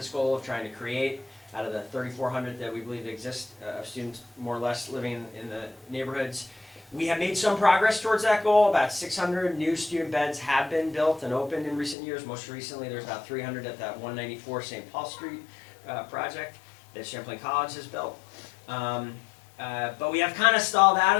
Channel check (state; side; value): drops out; right; at 12.0 s